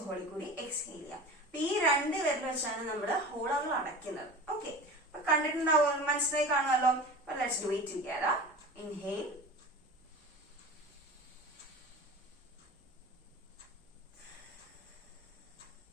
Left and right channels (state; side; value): normal; both; correlation 0.35